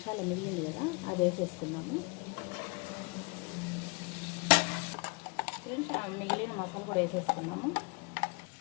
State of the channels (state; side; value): quieter; right; 31.5 dB